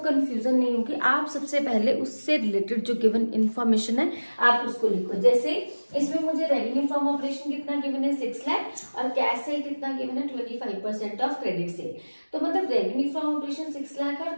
नहीं होगी, आप सबसे पहले उससे रिलेटेड जो गिवन इन्फॉर्मेशन है आप उसको लिखो। जैसे इसमें मुझे रेवेन्यू फ्रॉम ऑपरेशन कितना गिवन है? 6 लाख, और कैश सेल कितना गिवन है? 25% ऑफ क्रेडिट सेल। तो मतलब रेवेन्यू फ्रॉम ऑपरेशन 6 लाख है और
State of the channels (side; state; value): both; inverted; correlation -1.00